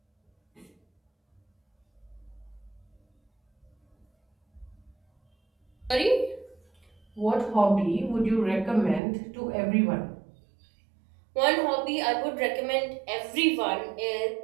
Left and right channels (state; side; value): drops out; left; at 9.0 s